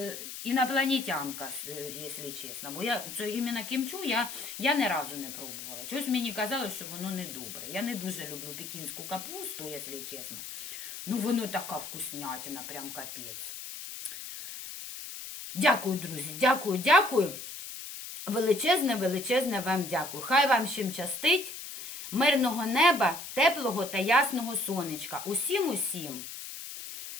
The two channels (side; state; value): left; noise; hiss, 9 dB below the sound